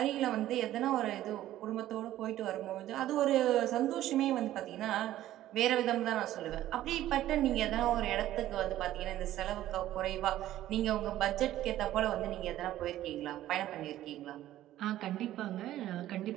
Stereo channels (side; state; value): left; quieter; 13.7 dB